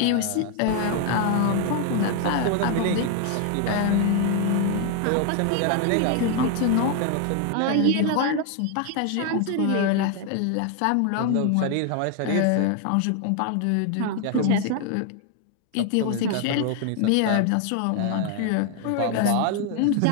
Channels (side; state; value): both; different; correlation 0.00